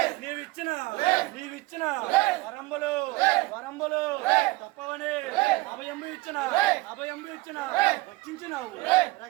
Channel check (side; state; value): left; quieter; 21.3 dB